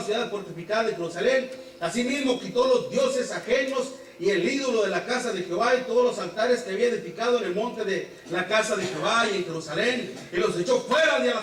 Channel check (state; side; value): identical; both; correlation 1.00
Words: ciudad fortificada de Jerusalén. Asimismo quitó los dioses ajenos y el ídolo de la casa de Jehová y todos los altares que había edificado en el monte de la casa de Jehová y en Jerusalén, y los echó fuera de la